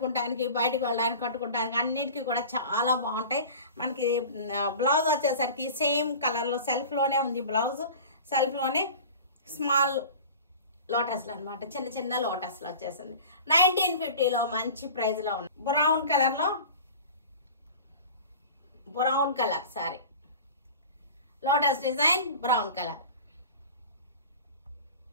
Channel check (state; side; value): inverted; both; correlation -0.38